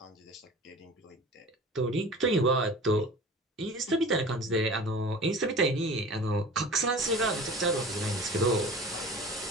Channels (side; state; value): both; normal; correlation 0.39